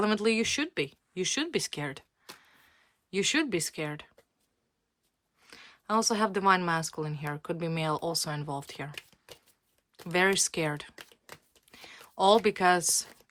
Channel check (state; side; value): identical; both; correlation 1.00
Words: you should be. You should be scared. You should be scared. I also have divine masculine here. Could be male also involved here. Very scared. All because